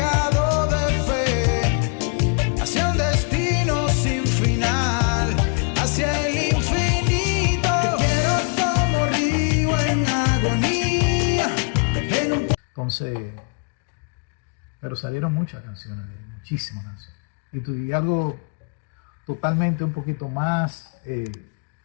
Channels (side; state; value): right; quieter; 38.4 dB